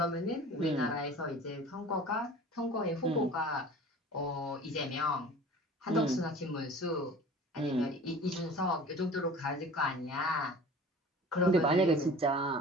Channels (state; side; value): normal; both; correlation 0.42